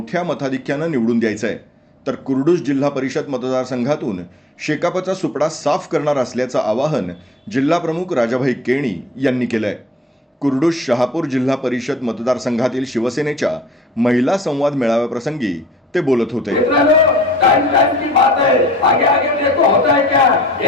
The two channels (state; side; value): normal; both; correlation 0.52